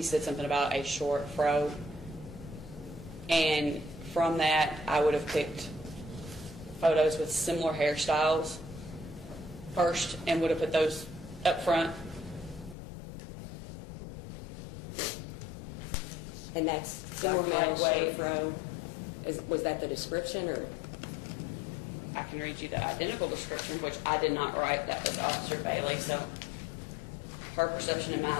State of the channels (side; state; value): right; drops out; at 12.8 s